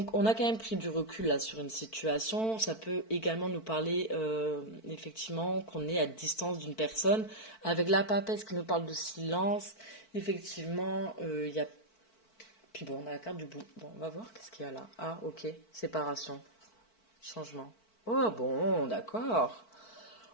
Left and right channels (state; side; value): late; right; 4.5 ms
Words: on a quand même pris du recul là sur une situation. Ça peut également nous parler effectivement qu'on est à distance d'une personne. Avec la papesse qui nous parle de silence, effectivement, il y a... Puis bon, on a la carte du bout. Bon, on va voir qu'est-ce qu'il y a là. Ah, ok, séparation, changement. Oh bon, d'accord.